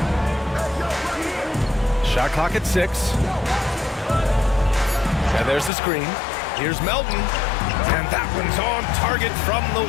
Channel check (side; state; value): right; drops out; at 5.7 s